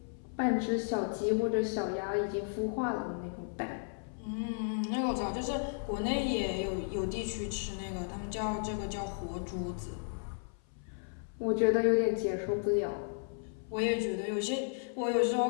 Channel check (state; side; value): silent; right; 55 dB below the other